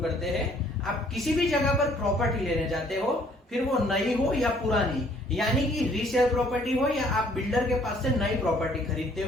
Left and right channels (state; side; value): normal; both; correlation 0.61